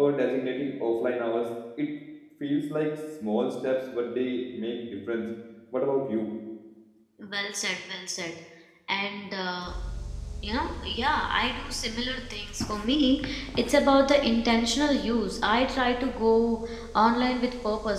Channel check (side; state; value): both; identical; correlation 1.00